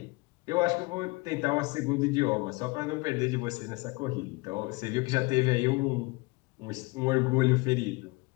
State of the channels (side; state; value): right; quieter; 25.4 dB